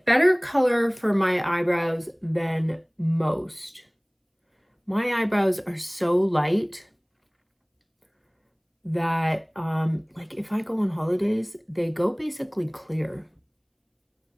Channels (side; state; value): both; identical; correlation 1.00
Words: color for my eyebrows than most. My eyebrows are so light that like if I go on holidays, they go basically clear.